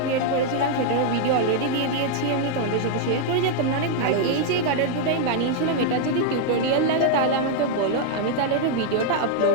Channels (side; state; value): both; different; correlation 0.00